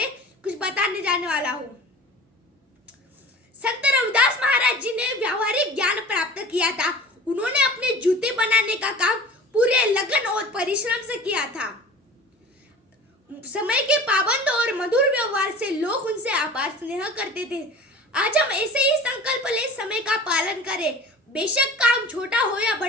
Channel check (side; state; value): both; normal; correlation 0.40